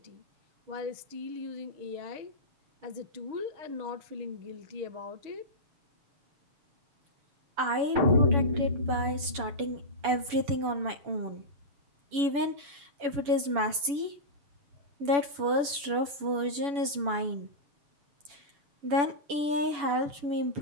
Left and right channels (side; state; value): left; late; 7.0 ms